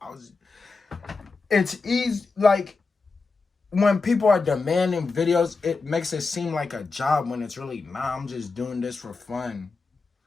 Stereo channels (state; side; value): quieter; right; 4.1 dB